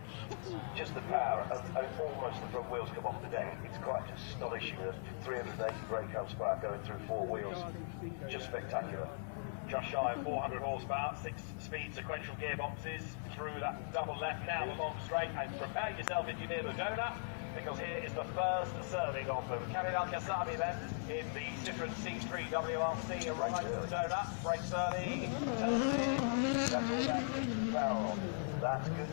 Just the power of almost the front wheels come off today. It's quite astonishing that 380 brake horsepower going through four wheels. Just spectacular. Just shy of 400 horsepower, 6-speed sequential gearboxes through that double left now the long straight, and prepare yourself if you're near the donut, because here is the first serving of them. Cholmondeley Castle then in the Citroen C3 WRC arrives at the donut, brakes early, turns in. That's all about keeping the power on. That's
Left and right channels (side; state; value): right; silent; digital silence